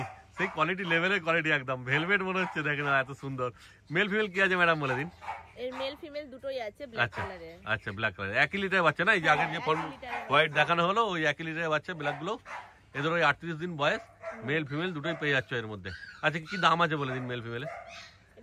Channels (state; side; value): identical; both; correlation 1.00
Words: সেই কোয়ালিটি লেভেলের কোয়ালিটি, একদম ভেলভেট মনে হচ্ছে, দেখে না এত সুন্দর। মেল ফিমেল কি আছে ম্যাডাম বলে দিন। এর মেল ফিমেল দুটোই আছে ব্ল্যাক আচ্ছা কালারের। আচ্ছা ব্ল্যাক কালার, 1 লিটারের বাচ্চা না? এই যে আগের যে হোয়াইট দেখানো হলো ওই 1 লিটারের বাচ্চা ব্ল্যাক গুলো। এদের ওই 38 দিন বয়স, মেল ফিমেল দুটোই পেয়ে যাচ্ছে এর মধ্যে। আচ্ছা কি দাম আছে বলে দিন মেল ফিমেলে।